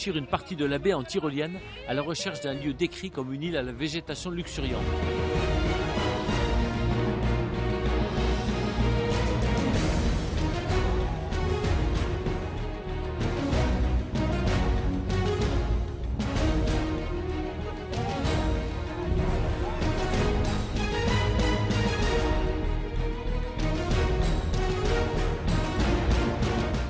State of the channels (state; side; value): identical; both; correlation 1.00